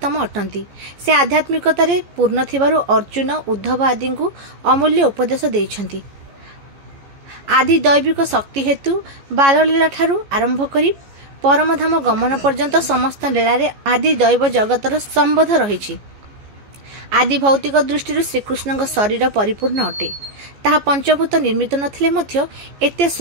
अटंती। से आध्यात्मिकतारे पूर्ण थिबारु अर्जुन उद्धव आदि को अमूल्य उपदेश देइछंती। आदि दैविक शक्ति हेतु बाललीला ठारू आरंभ करी परमधाम गमन पर्यंत समस्त लीलारे आदि दैव जगतर संबोध रही। आदि भौतिक दृष्टि श्रीकृष्ण शरीर परिपूर्ण अटे। ताहा पंचभूत निर्मित नथिले मध्य एते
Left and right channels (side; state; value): left; late; 14 ms